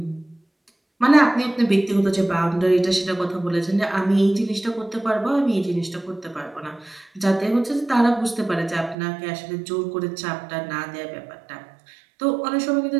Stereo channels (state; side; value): drops out; left; at 9.0 s